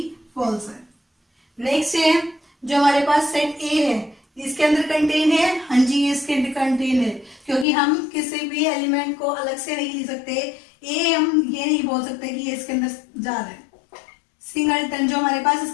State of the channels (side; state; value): right; drops out; at 7.7 s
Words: फॉल्स है। नेक्स्ट है जो हमारे पास सेट ए है, इसके अंदर कंटेन है। हाँ जी, इसके अंदर कंटेन है, क्योंकि हम किसी भी एलिमेंट को अलग से नहीं ले सकते। ए हम ये नहीं बोल सकते कि ये इसके अंदर जा रहा है। सिंगलटन जो हमारे पास